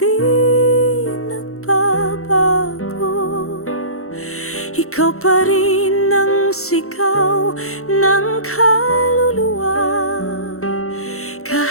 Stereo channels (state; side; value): late; right; 0.63 ms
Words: nagbabago. Ikaw pa rin ang sigaw ng kaluluwa.